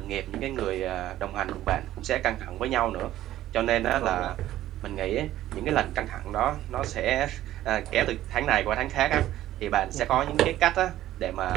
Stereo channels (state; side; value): quieter; left; 13.7 dB